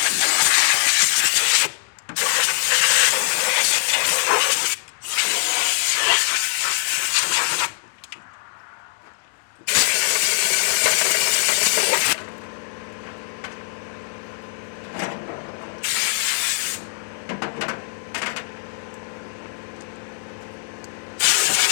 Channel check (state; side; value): silent; right; digital silence